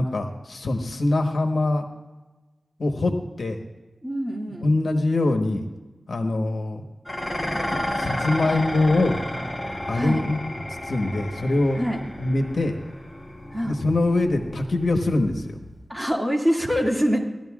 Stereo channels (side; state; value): both; normal; correlation 0.96